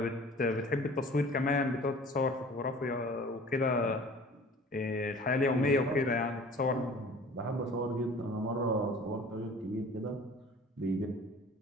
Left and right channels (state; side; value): normal; both; correlation 0.46